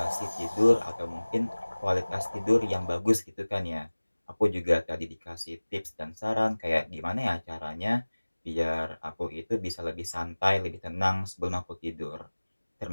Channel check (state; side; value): inverted; both; correlation -1.00